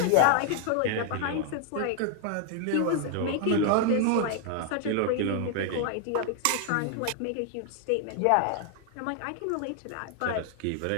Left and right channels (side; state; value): both; different; correlation 0.00